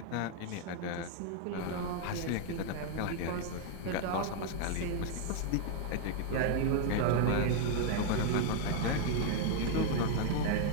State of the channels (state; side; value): different; both; correlation 0.00